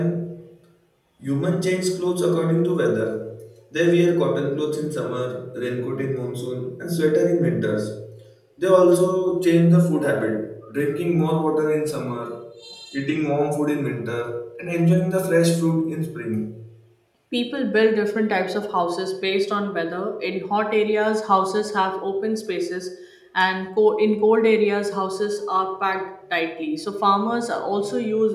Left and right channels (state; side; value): identical; both; correlation 1.00